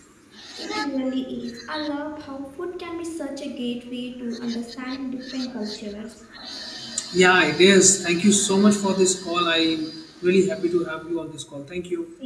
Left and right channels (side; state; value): both; identical; correlation 1.00